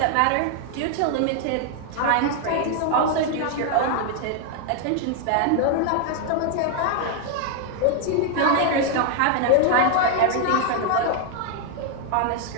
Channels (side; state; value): both; different; correlation 0.00